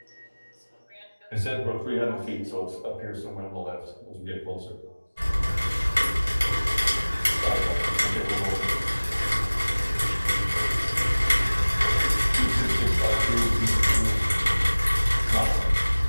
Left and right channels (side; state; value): both; inverted; correlation -1.00